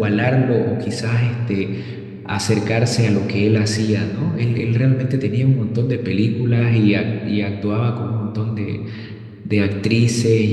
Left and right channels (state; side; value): identical; both; correlation 1.00